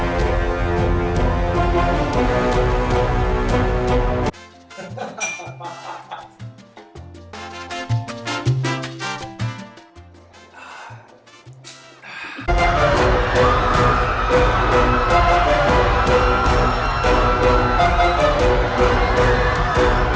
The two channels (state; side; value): identical; both; correlation 1.00